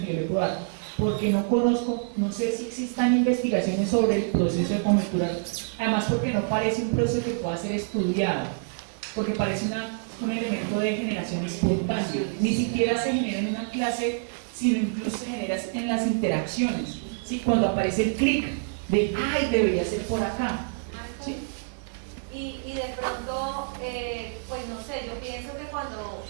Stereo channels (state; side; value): silent; left; 60 dB below the other